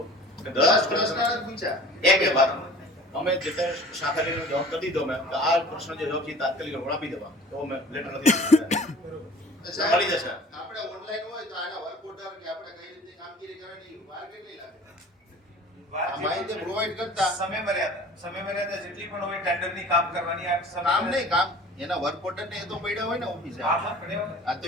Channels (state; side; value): normal; both; correlation 0.45